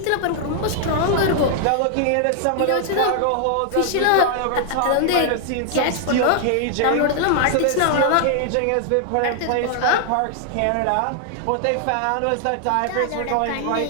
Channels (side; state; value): both; different; correlation 0.00